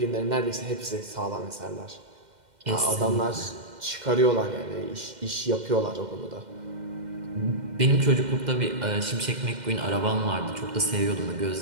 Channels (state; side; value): late; left; 2.1 ms